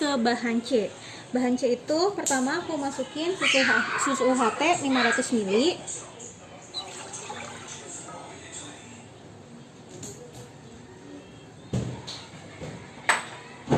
bahan C. Bahan C itu pertama aku masukin susu UHT 500 ml.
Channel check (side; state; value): both; identical; correlation 1.00